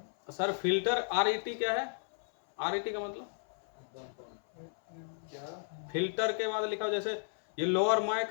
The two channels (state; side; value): silent; right; 55 dB below the other